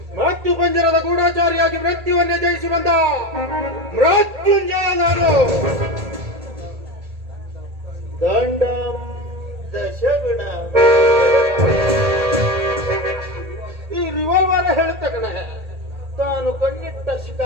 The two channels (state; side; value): late; left; 1.8 ms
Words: ಮೃತ್ಯು ಪಂಜರದ ಗೂಢಾಚಾರಿಯಾಗಿ ಮೃತ್ಯುವನ್ನೇ ಜಯಿಸಿ ಬಂದ ಮೃತ್ಯುಂಜಯ ನಾನು. ದಂಡಂ ದಶಗುಣ. ಈ ರಿವಾಲ್ವರ್ ಹೇಳುತ್ತ ಕಣ, ತಾನು ಕಣ್ಣಿಟ್ಟ